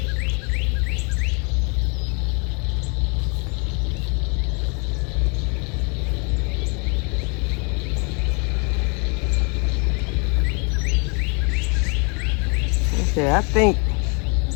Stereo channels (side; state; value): right; quieter; 34.8 dB